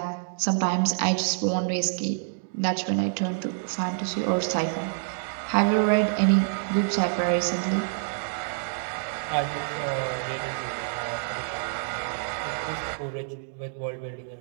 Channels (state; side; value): silent; left; digital silence